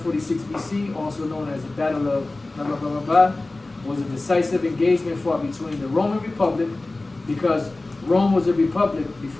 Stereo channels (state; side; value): quieter; right; 3.0 dB